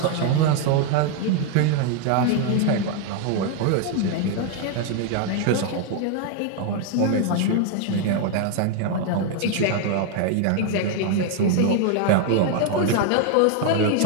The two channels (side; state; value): both; different; correlation 0.00